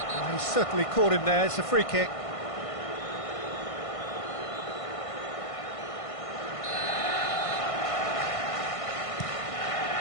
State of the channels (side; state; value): right; late; 1.5 ms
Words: Well, he's certainly caught him there. It's a free kick.